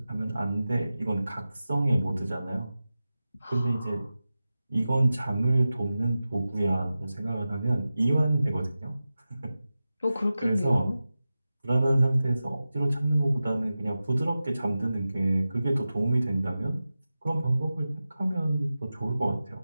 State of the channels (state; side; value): inverted; both; correlation -0.94